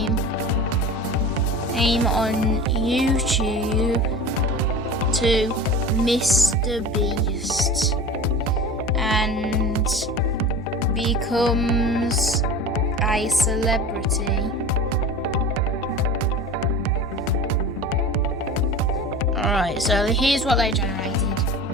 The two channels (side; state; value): both; normal; correlation 0.35